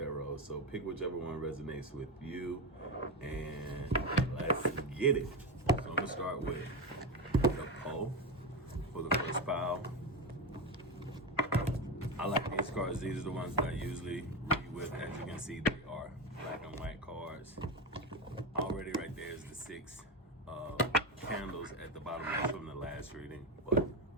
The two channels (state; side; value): normal; both; correlation 0.15